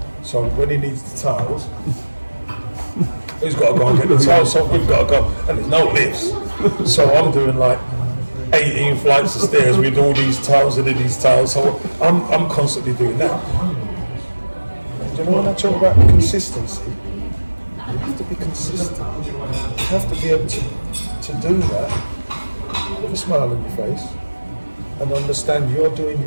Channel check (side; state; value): both; inverted; correlation -1.00